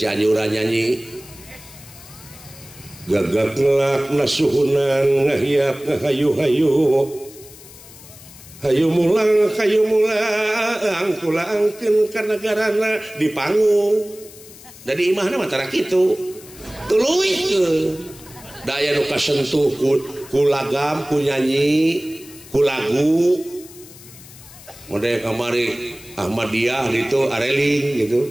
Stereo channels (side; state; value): left; noise; hiss, 19 dB below the sound